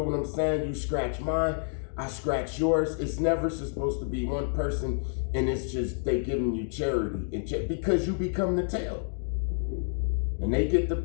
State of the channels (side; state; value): right; silent; digital silence